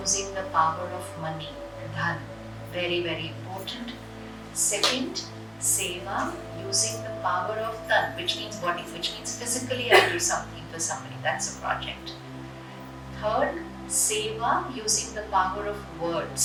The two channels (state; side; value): identical; both; correlation 1.00